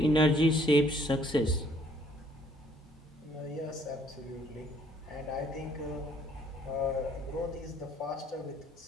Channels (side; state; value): both; normal; correlation 0.62